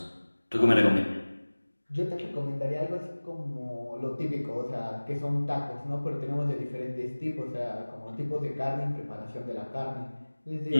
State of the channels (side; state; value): both; inverted; correlation -1.00